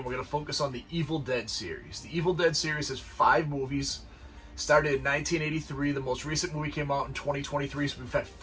we're going to focus on the Evil Dead series. The Evil Dead series has 5 movies. Started in 1983. The most recent movie came out in 2023, so we've had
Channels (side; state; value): both; identical; correlation 1.00